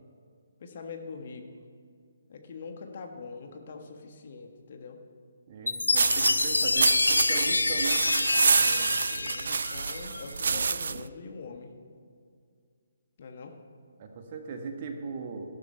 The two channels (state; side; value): inverted; both; correlation -0.89